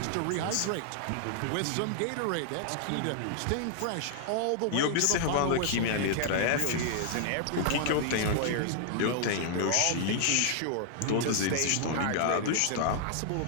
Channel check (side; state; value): both; different; correlation -0.01